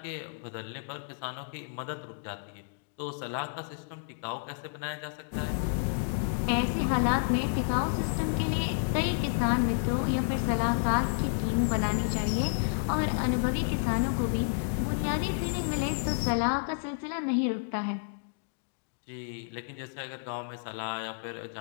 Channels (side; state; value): right; silent; digital silence